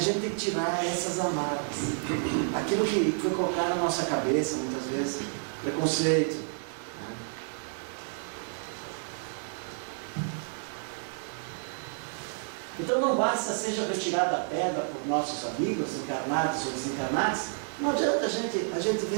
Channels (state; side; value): silent; left; 58 dB below the other